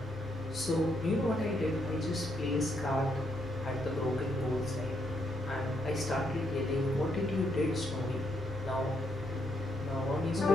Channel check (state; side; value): normal; both; correlation 0.76